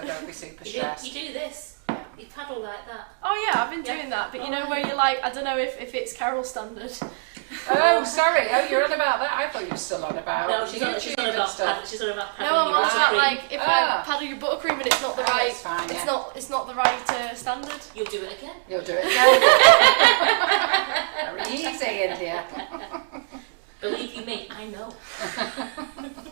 don't be super stressed. You do this. You paddle like that. Oh yeah, I've been doing that, but you know where you're like, I don't know if it's Carol standard. Oh, sorry. Oh, you're on about that. I thought you were still on about YouTube and stuff. She's on about No, paddling I'm your also buttercream. like, if I paddle your buttercream and it's not the right, it's fine, yeah. it's not the right standard. You'll do it again. You'll do it again. Very easy, India. Believe you me, I know.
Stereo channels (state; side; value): silent; left; digital silence